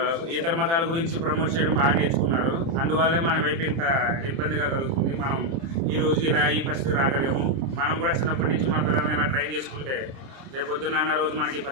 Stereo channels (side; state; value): left; late; 30 ms